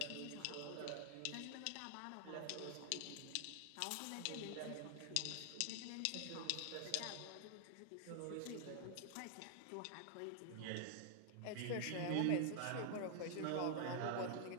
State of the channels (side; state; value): both; different; correlation 0.00